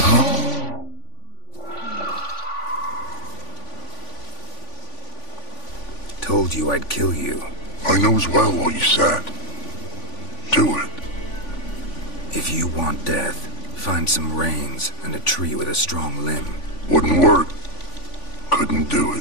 Told you I'd kill you. I knows well what you said. Do it. If you want death, find some reins and a tree with a strong limb. Wouldn't work. Couldn't do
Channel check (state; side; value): late; right; 3.5 ms